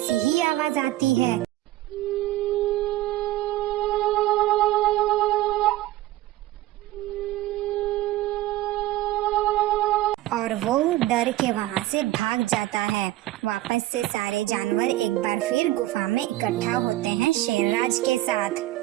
ही आवाज आती है। और वो डर के वहाँ से भाग जाता है। वापस से सारे जानवर एक बार फिर गुफा में इकट्ठा होते हैं शेरराज के साथ।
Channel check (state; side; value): quieter; left; 16.1 dB